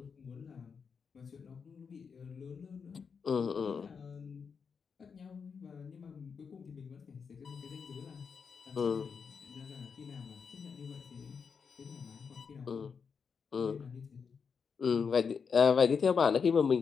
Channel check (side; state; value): right; quieter; 6.0 dB